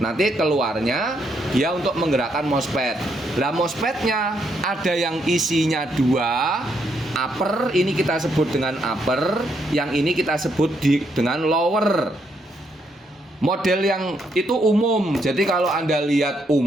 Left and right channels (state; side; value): normal; both; correlation 0.75